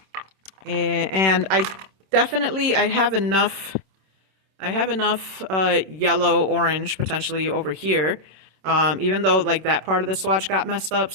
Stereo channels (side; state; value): left; late; 26 ms